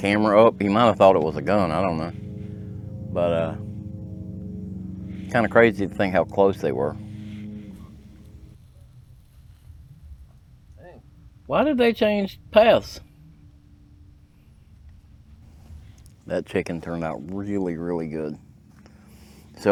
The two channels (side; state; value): both; identical; correlation 1.00